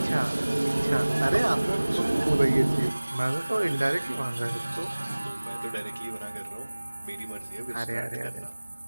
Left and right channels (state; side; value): inverted; both; correlation -1.00